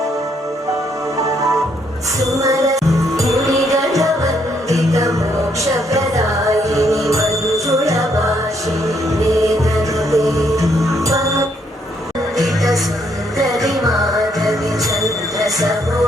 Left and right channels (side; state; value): both; normal; correlation 0.72